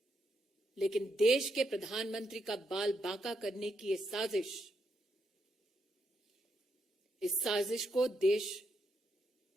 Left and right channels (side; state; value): both; normal; correlation 0.80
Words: लेकिन देश के प्रधानमंत्री का बाल बांका करने की ये साजिश, इस साजिश को देश